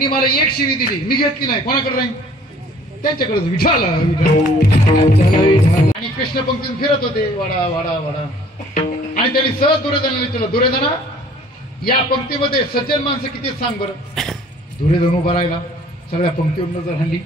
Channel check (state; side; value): normal; both; correlation 0.54